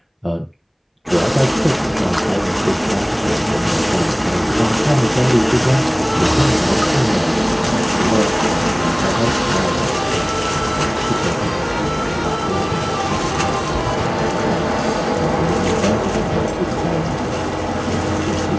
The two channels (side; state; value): both; identical; correlation 1.00